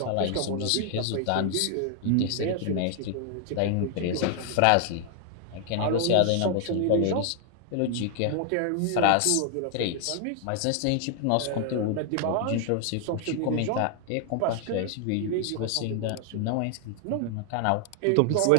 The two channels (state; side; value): different; both; correlation 0.00